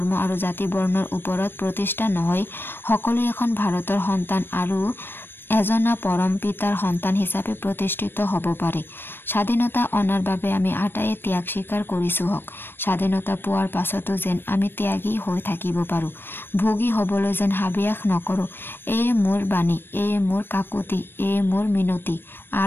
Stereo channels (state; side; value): late; right; 0.099 ms